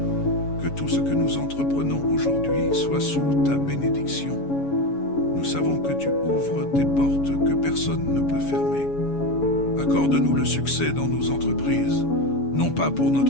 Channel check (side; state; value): right; late; 7.1 ms